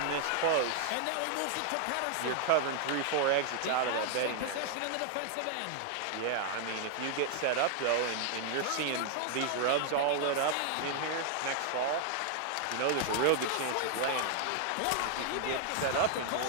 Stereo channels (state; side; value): different; both; correlation 0.00